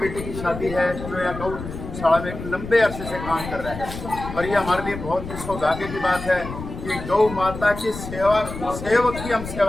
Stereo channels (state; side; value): noise; left; rumble, 10 dB below the sound